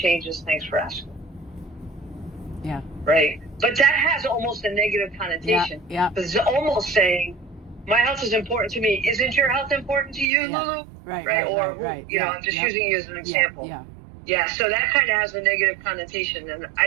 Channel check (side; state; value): left; drops out; at 10.3 s